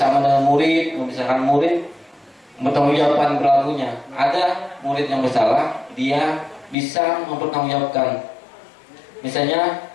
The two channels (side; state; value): right; drops out; at 6.8 s